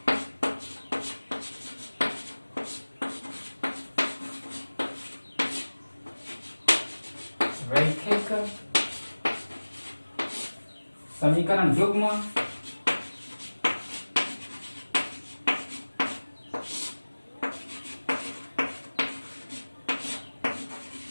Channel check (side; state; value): both; inverted; correlation -1.00